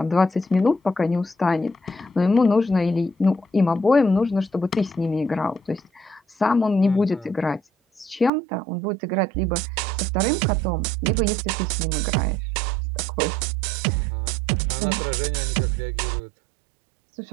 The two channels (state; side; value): drops out; left; at 8.3 s